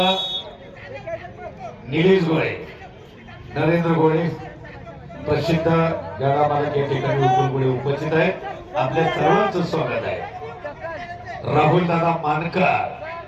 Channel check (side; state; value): both; identical; correlation 1.00